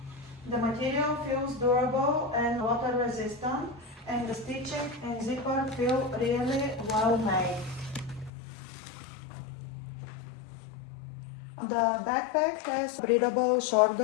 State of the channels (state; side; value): drops out; right; at 8.3 s